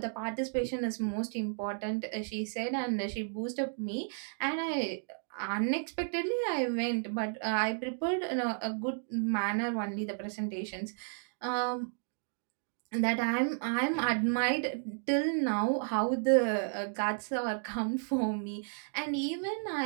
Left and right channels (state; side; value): silent; left; digital silence